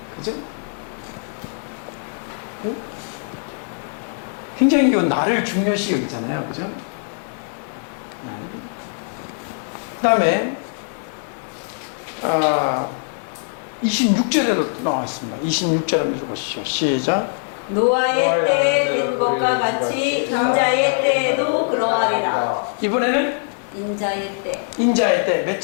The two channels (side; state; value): right; silent; 64 dB below the other